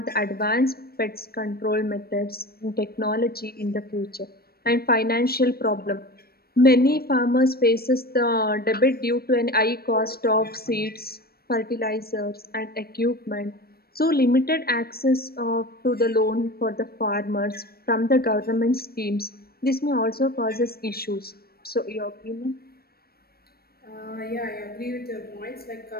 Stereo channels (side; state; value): right; late; 0.44 ms